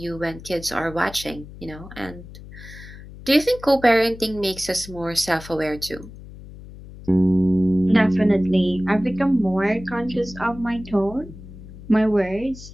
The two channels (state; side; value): noise; left; hum, 16 dB below the sound